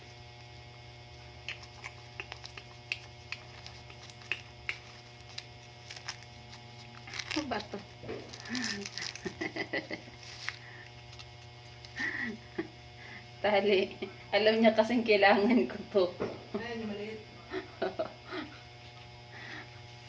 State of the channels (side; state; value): both; identical; correlation 1.00